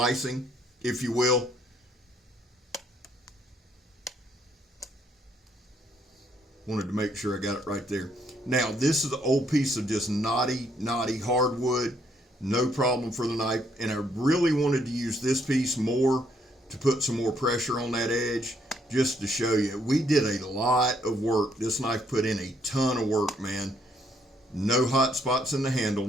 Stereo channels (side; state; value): both; normal; correlation 0.70